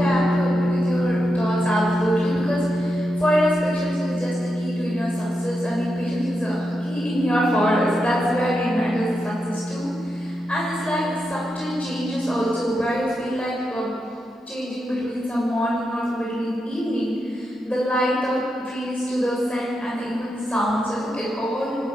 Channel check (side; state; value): both; normal; correlation 0.86